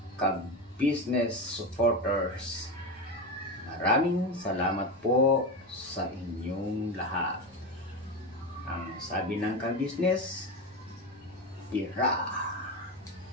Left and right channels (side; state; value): both; normal; correlation 0.19